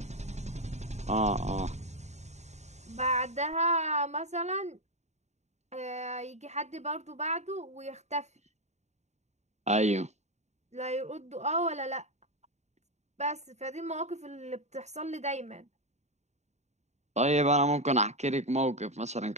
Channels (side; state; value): left; late; 0.33 ms